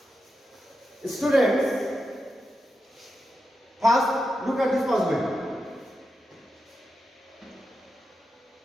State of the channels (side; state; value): both; normal; correlation 0.88